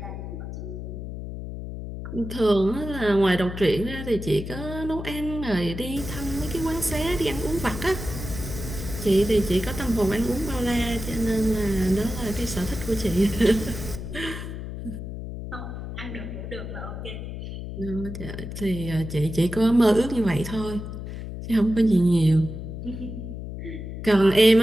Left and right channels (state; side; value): noise; left; hum, 8 dB below the sound